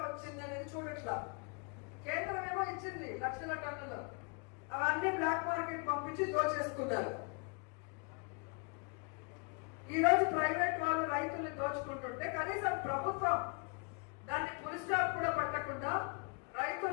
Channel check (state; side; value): quieter; right; 34.9 dB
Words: వచ్చింది అనేది చూడట్లా. కేంద్రం ఏమో ఇచ్చింది లక్షల టన్నులు, అవన్నీ బ్లాక్ మార్కెట్ పంపించి దోచేసుకున్నారు. ఈ రోజు ప్రైవేట్ వాళ్ళు రైతుల్ని దోచుకుంటుంటే కనీసం ప్రభుత్వం దాన్ని ఫుల్ స్టాప్ కూడా పెట్టకుండా